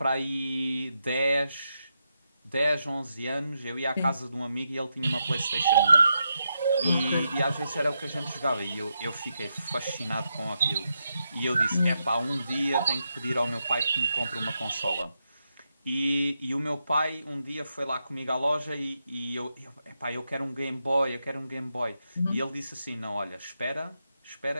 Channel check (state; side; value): inverted; both; correlation -0.84